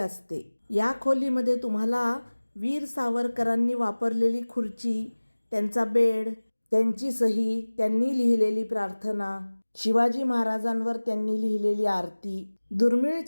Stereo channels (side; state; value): both; inverted; correlation -1.00